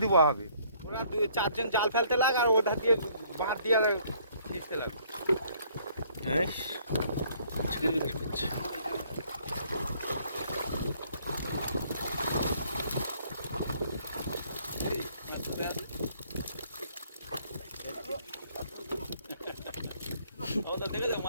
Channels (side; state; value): both; inverted; correlation -0.62